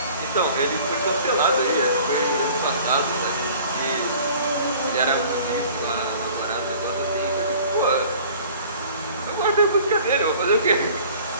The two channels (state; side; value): inverted; both; correlation -0.48